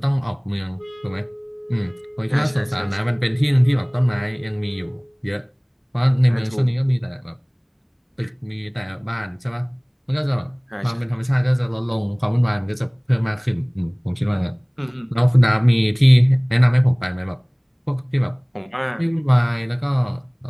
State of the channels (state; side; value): identical; both; correlation 1.00